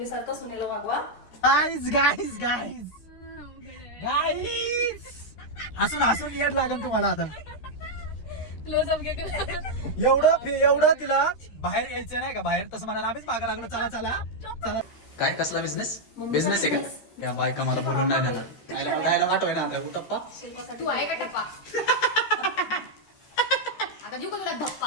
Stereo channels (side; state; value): right; late; 13 ms